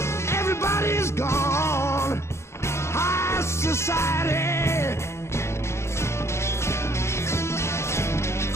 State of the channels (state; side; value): late; right; 0.13 ms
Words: Everybody's gone. High society.